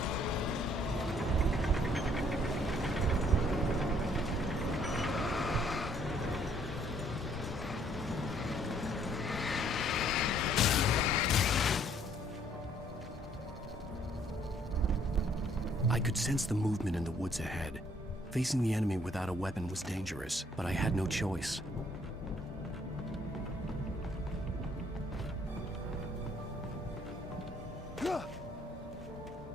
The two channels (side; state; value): both; normal; correlation 0.64